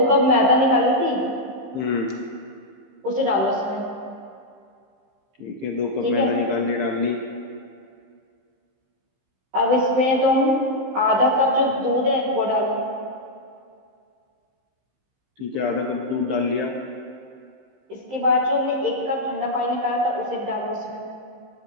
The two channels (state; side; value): late; left; 15 ms